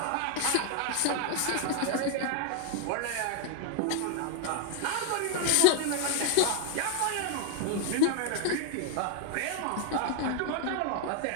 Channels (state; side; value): different; both; correlation 0.00